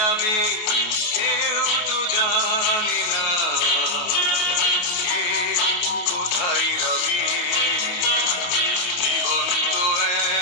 যাবে কেউ তো জানে না কে কোথায় রবে। জীবন তো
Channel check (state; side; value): late; right; 28 ms